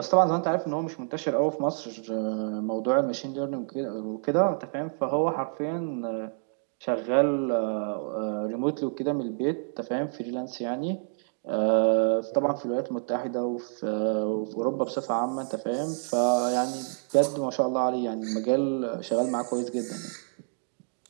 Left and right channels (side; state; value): left; silent; digital silence